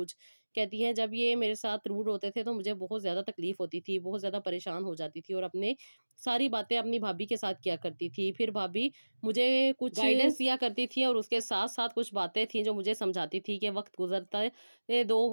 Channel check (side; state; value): both; inverted; correlation -1.00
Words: कहती हैं जब ये मेरे साथ रूड होते थे तो मुझे बहुत ज़्यादा तकलीफ़ होती थी, बहुत ज़्यादा परेशान हो जाती थी और अपने सारी बातें अपनी भाभी के साथ किया करती थी। फिर भाभी मुझे कुछ गाइडेंस दिया करती थी और उसके साथ-साथ कुछ बातें थी जो मुझे समझाती थी कि वक़्त गुज़रता ये